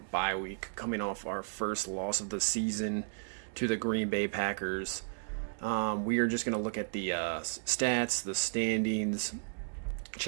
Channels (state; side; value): silent; left; digital silence